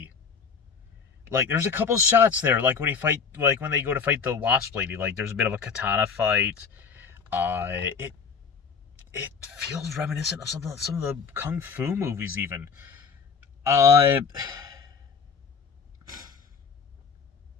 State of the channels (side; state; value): right; quieter; 5.9 dB